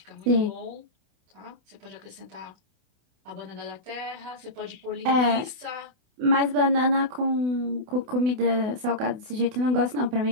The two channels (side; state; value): left; late; 28 ms